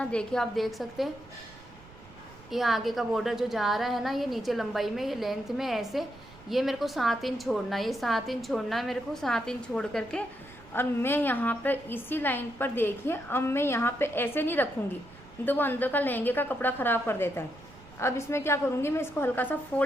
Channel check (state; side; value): noise; right; rumble, 21 dB below the sound